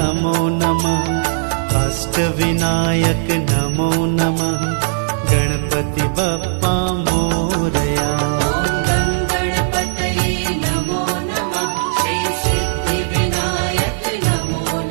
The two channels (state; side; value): silent; left; 62 dB below the other